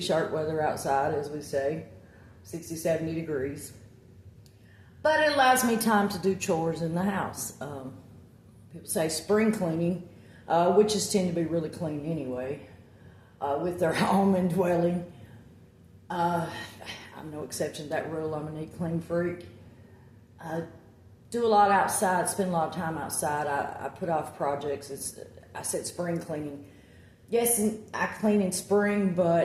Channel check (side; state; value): both; identical; correlation 1.00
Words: weather outside, as we say, 60, 70 degrees. But it allows me time to do chores in the house. People say spring cleaning, witches tend to be really clean anyway, with their home and dwelling. I'm no exception to that rule. I'm a neat, clean freak. I do a lot outside, spend a lot of time outside. I put off projects. I said spring cleaning. Yes, I clean in spring,